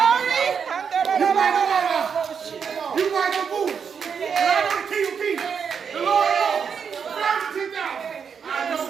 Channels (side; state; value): left; quieter; 6.7 dB